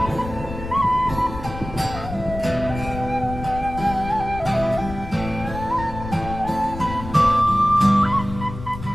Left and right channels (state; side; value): noise; left; rumble, 10 dB below the sound